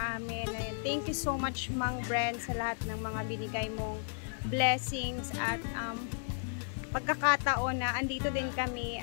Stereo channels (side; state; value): right; silent; 55 dB below the other